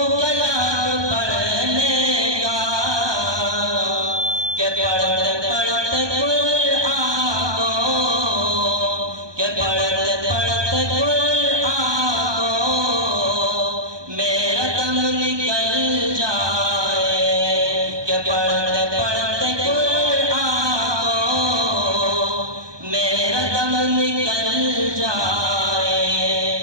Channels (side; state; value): left; late; 1.2 ms